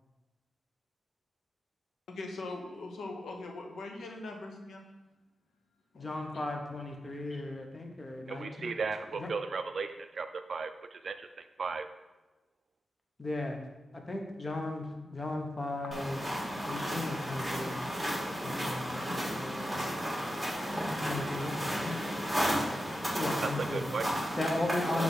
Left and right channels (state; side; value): normal; both; correlation 0.89